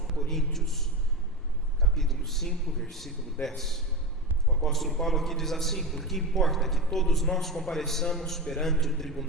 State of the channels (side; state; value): both; normal; correlation 0.21